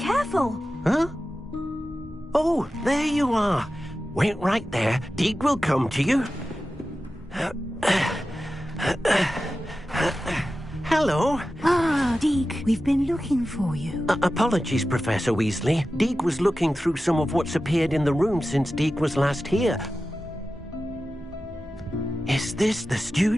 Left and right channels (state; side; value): normal; both; correlation 0.94